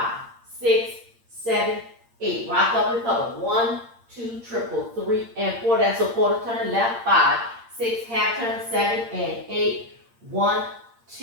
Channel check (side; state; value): left; late; 8.7 ms